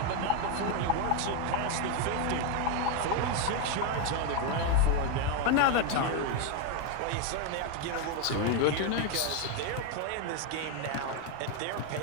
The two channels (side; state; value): both; different; correlation 0.02